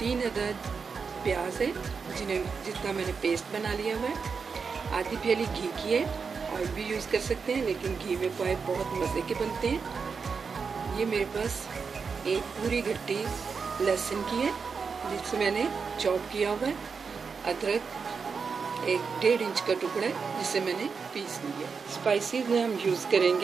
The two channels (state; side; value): quieter; left; 5.5 dB